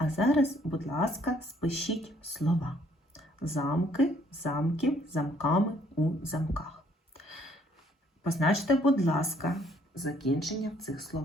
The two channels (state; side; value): normal; both; correlation 0.64